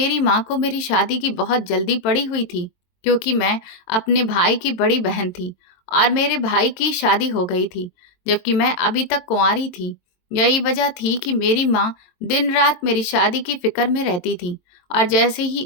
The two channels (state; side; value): late; right; 22 ms